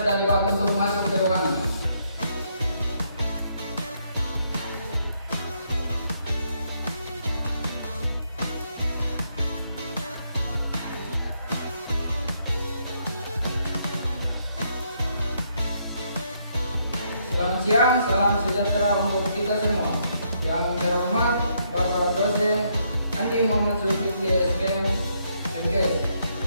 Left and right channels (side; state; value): both; inverted; correlation -0.74